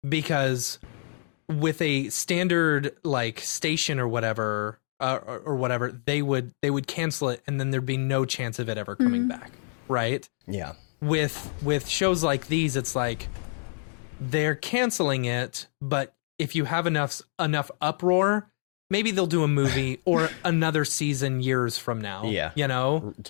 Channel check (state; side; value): silent; right; digital silence